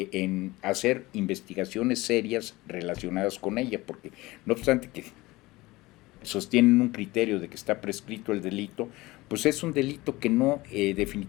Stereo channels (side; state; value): right; quieter; 20.3 dB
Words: hacer investigaciones serias relacionadas con ella, porque no obstante que sostienen un criterio de que está prescrito el delito, pues es un delito que no,